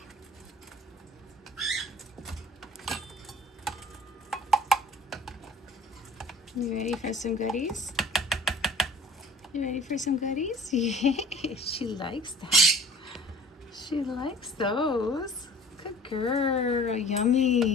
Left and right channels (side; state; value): both; normal; correlation 0.46